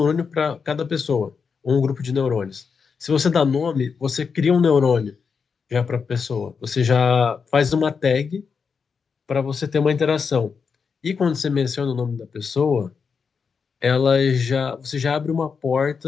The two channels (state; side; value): quieter; right; 5.7 dB